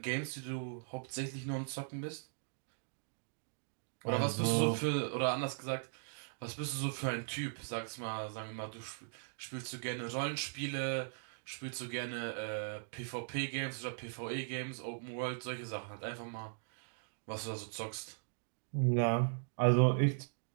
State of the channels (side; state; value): left; silent; digital silence